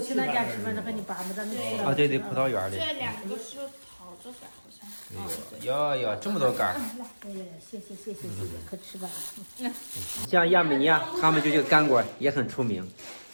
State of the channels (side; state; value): both; inverted; correlation -1.00